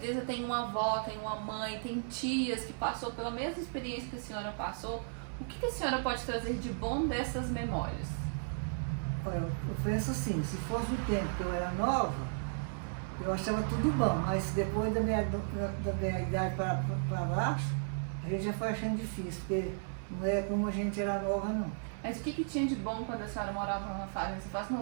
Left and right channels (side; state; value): left; silent; 55 dB below the other